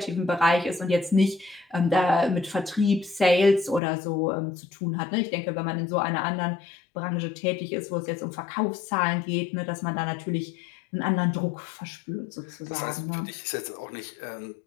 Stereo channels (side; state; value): right; drops out; at 3.8 s